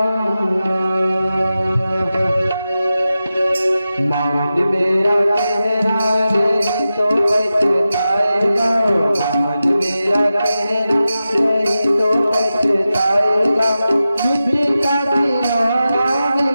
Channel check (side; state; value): both; inverted; correlation -0.93